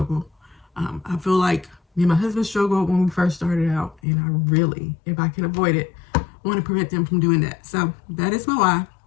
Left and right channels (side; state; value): right; drops out; at 4.0 s